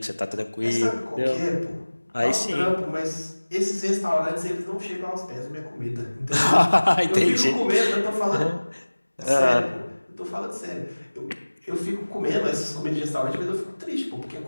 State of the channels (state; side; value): inverted; both; correlation -1.00